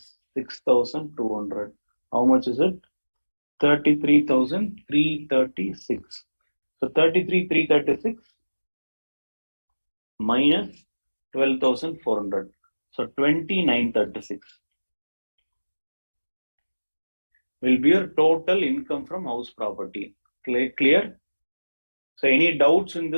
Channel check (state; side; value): inverted; both; correlation -1.00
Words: 6,200. How much is it? 33,336. So 33,336 minus 12,400. So 29,36 will be your total income from house property. Clear? So any doubts in